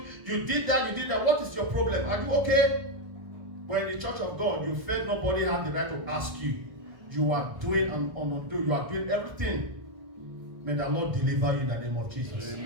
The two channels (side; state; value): left; late; 1.3 ms